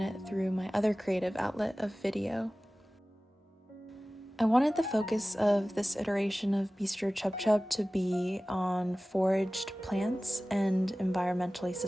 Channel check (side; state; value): both; normal; correlation 0.97